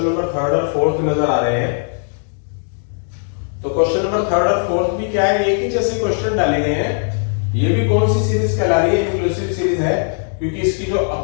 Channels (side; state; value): right; silent; digital silence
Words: नंबर थर्ड और फोर्थ नजर आ रहे हैं, तो क्वेश्चन नंबर थर्ड और फोर्थ भी क्या है, एक ही जैसे क्वेश्चन डाले गए हैं। ये भी कौन सी सीरीज कहला रही है, इंक्लूसिव सीरीज है, क्योंकि इसकी जो